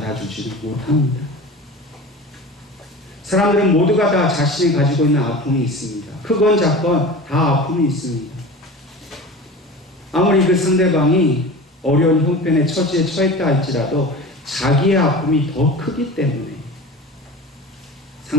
못합니다. 사람들은 모두가 다 자신이 가지고 있는 아픔이 있습니다. 크건 작건 다 아픔이 있습니다. 아무리 그 상대방이 어려운 형편의 처지에 처했다 할지라도 자기의 아픔이 더 크기 때문에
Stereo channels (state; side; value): normal; both; correlation 0.35